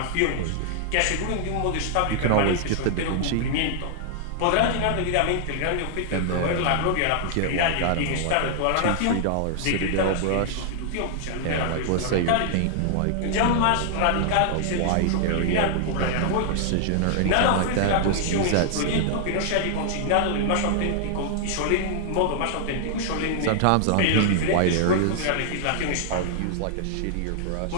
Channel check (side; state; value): both; different; correlation -0.01